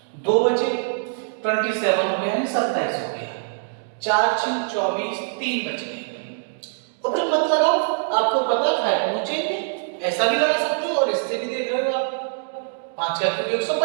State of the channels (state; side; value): silent; left; digital silence